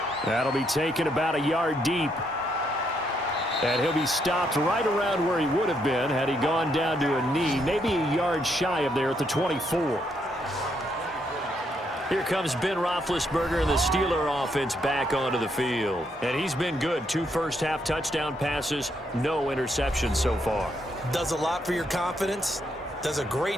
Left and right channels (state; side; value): normal; both; correlation 0.75